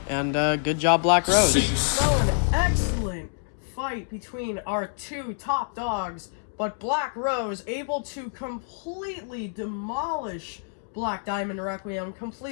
and good job, Black Rose. An excellent fight between our two top dogs, but Black Rose able to completely demolish Black Diamond Requiem,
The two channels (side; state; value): right; silent; digital silence